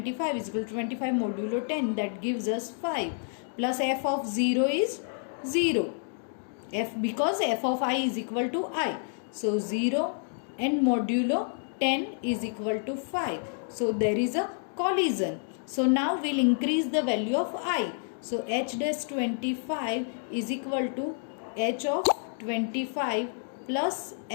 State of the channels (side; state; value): right; silent; 58 dB below the other